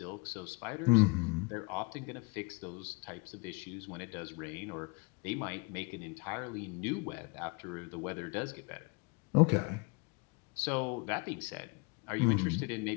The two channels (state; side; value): quieter; right; 28.9 dB